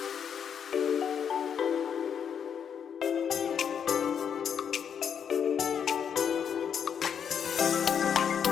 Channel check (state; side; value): quieter; right; 7.8 dB